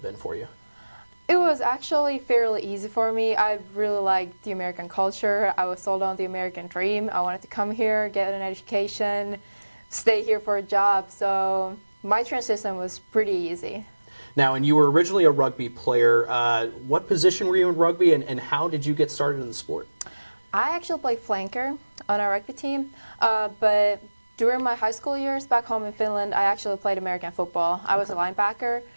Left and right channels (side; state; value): both; inverted; correlation -1.00